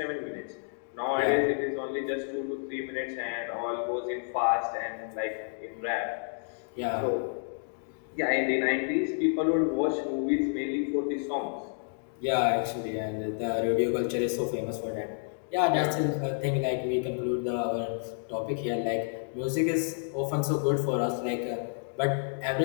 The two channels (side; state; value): right; silent; digital silence